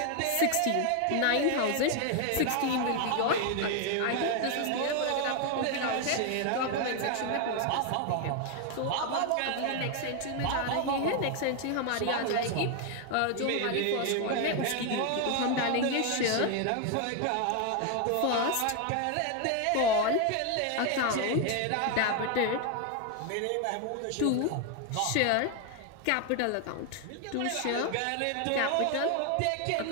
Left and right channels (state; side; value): different; both; correlation 0.01